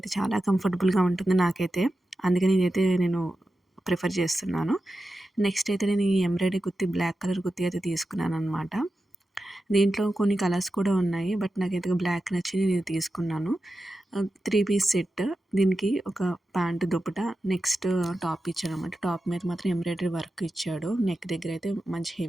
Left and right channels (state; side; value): normal; both; correlation 0.91